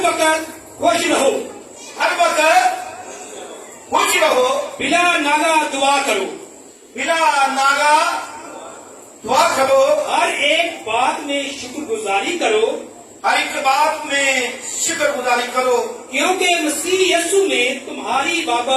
وقت خوش رہو، ہر وقت خوش رہو، بلا ناگا دعا کرو، بلا ناگا دعا کرو، ہر ایک بات میں شکر گزاری کرو، ہر ایک بات میں شکر گزاری کرو، کیونکہ مسیح یسوع میں تمہاری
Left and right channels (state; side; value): identical; both; correlation 1.00